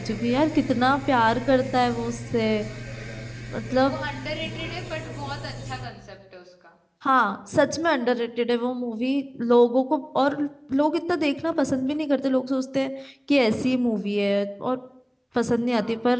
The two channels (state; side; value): identical; both; correlation 1.00